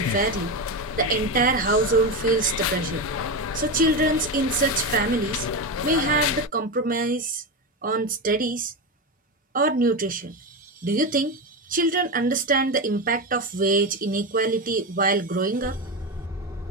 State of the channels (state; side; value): normal; both; correlation 0.16